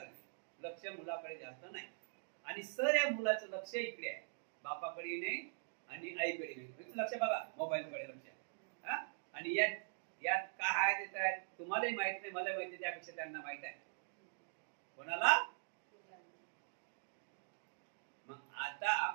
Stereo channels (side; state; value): left; silent; digital silence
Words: लक्ष मुलाकडे जास्त नाही. आणि सर या मुलाचं लक्ष इकडे आहे, बापाकडे नाही आणि आईकडे नाही. लक्ष बघा, मोबाईलकडे लक्ष. आणि यात काय आहे ते तुम्हालाही माहित नाही, मला माहिती, त्यापेक्षा त्यांना माहित आहे. कोणाला? मग आता